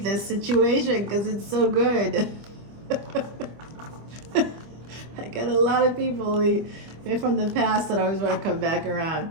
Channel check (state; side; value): late; left; 25 ms